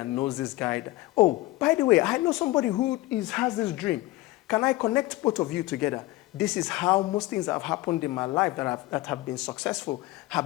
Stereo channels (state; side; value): quieter; right; 18.5 dB